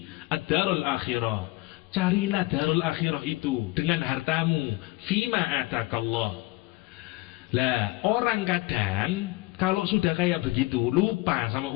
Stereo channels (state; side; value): quieter; right; 21.0 dB